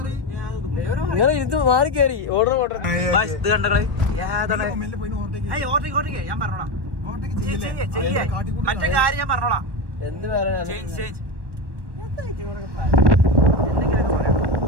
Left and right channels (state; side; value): late; left; 1.1 ms